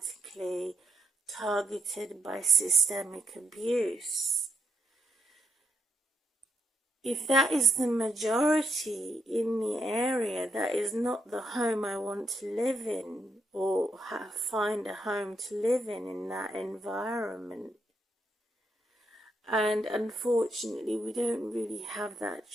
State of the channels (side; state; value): both; normal; correlation 0.77